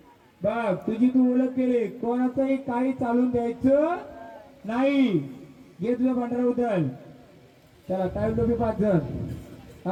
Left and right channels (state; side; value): identical; both; correlation 1.00